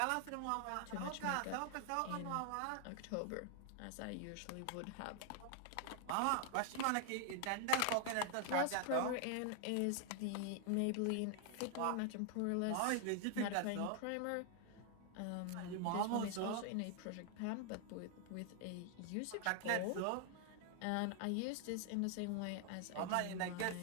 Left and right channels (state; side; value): different; both; correlation 0.00